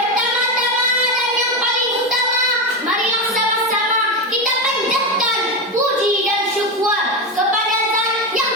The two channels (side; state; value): both; normal; correlation 0.14